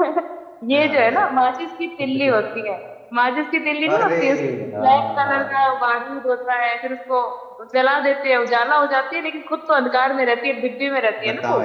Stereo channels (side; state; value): both; identical; correlation 1.00